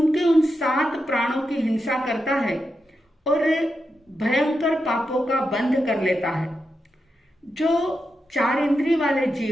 उन 7 प्राणों की हिंसा करता है और भयंकर पापों का बंध कर लेता है। जो 4 इंद्रिय वाले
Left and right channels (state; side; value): normal; both; correlation 0.87